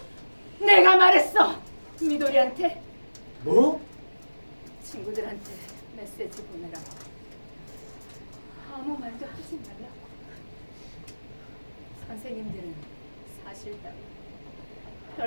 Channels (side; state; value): both; inverted; correlation -1.00